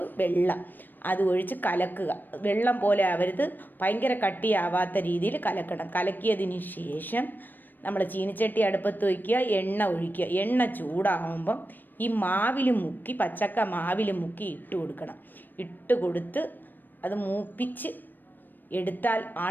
വെള്ളം അത് ഒഴിച്ച് കലക്കുക. വെള്ളം പോലെ ആവരുത്, ഭയങ്കര കട്ടിയാവാത്ത രീതിയിൽ കലക്കണം. കലക്കിയതിന് ശേഷം നമ്മൾ ചീനിച്ചട്ടി അടുപ്പത്ത് വയ്ക്കുക, എണ്ണ ഒഴിക്കുക. എണ്ണ ചൂടാകുമ്പം ഈ മാവിൽ മുക്കി, പച്ചക്ക മാവിൽ മുക്കി ഇട്ട് കൊടുക്കണം. ഇട്ട് കൊടുത്ത് അത് മൂപ്പിച്ച് എടുത്താൽ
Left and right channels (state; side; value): late; right; 0.091 ms